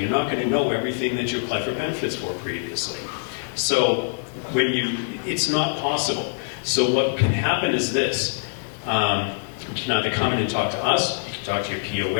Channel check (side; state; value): right; silent; digital silence